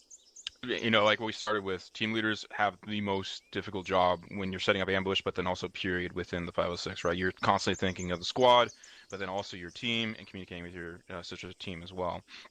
You know, like we started with, team leaders have the most difficult job when you're setting up ambush, but then also period within the 506, right? You're constantly thinking of the squad, but then also your team and communicating with your sister team as well.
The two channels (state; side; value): identical; both; correlation 1.00